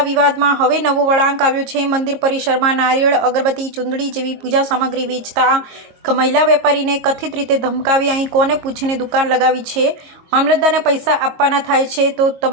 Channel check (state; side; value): late; left; 22 ms